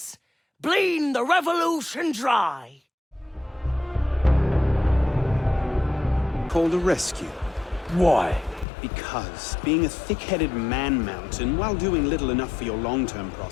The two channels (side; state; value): right; drops out; at 8.7 s